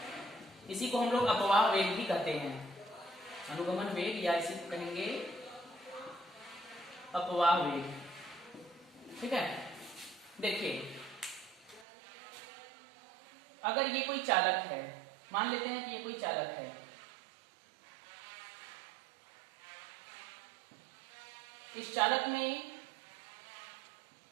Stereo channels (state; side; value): drops out; left; at 11.9 s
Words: इसी को हम लोग अपवाह वेग भी कहते हैं। अनुगमन वेग या इसी को कहेंगे अपवाह वेग। ठीक है, देखिए अगर ये कोई चालक है, मान लेते हैं कि ये कोई चालक है, इस चालक में